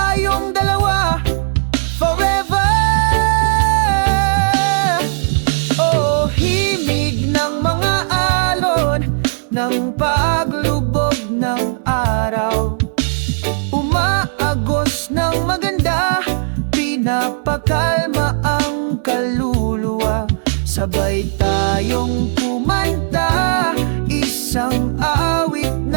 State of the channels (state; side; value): silent; left; 68 dB below the other